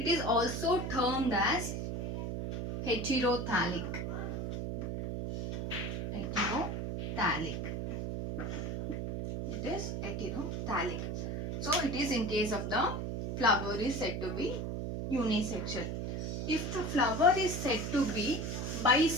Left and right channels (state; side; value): noise; right; hum, 3 dB below the sound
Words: is also termed as heterothallic. Heterothallic. It is heterothallic. So it is in case of the flower is said to be unisexual. If the flower is said to be